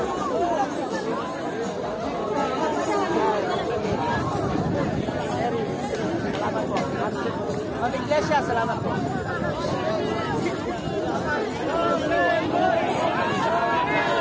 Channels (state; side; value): identical; both; correlation 1.00